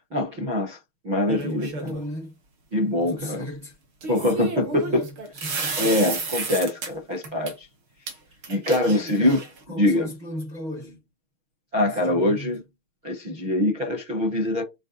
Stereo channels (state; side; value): late; left; 6.3 ms